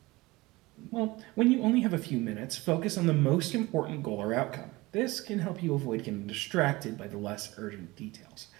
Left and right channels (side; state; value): left; quieter; 21.2 dB